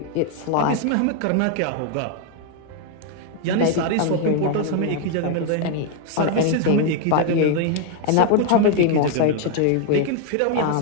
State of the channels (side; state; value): both; different; correlation 0.00